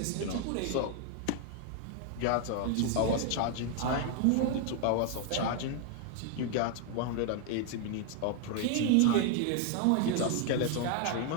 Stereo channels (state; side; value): different; both; correlation 0.00